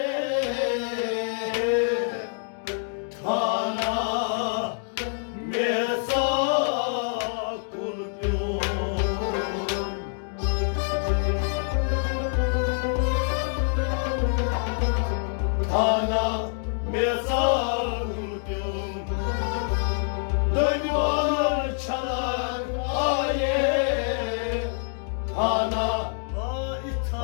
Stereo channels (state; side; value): silent; right; 61 dB below the other